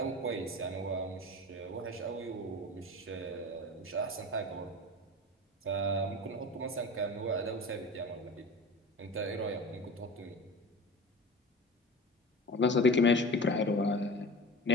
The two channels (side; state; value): both; normal; correlation 0.33